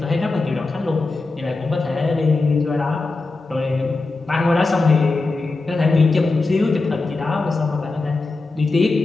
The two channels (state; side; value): quieter; right; 3.5 dB